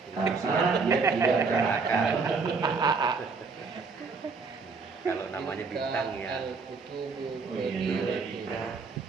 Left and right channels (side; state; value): left; quieter; 4.6 dB